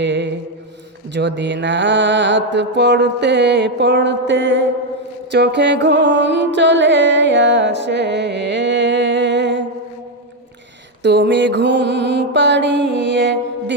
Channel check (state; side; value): normal; both; correlation 0.05